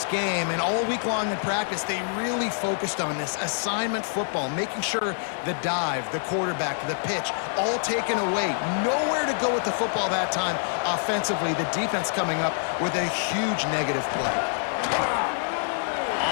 game, and all week long in practice, they really focused on this assignment football, making sure the dive, the quarterback, the pitch, all taken away. Nowhere to go with the football that time offensively. The defense coming up with a huge negative play.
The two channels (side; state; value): right; silent; digital silence